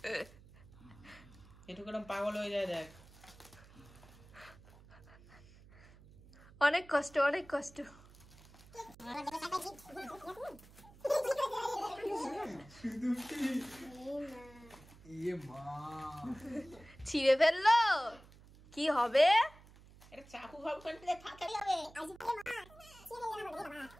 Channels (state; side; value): noise; right; hum, 22 dB below the sound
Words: কেরম পাগল হয়ে যায় দেখ। অনেক কষ্ট, অনেক কষ্ট। ইয়ে মা ছিঁড়ে ফেললো, কি হবে? এটা চাকু ভাব করতে ফাটাই হবে।